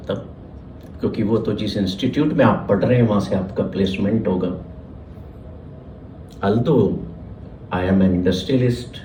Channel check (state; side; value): identical; both; correlation 1.00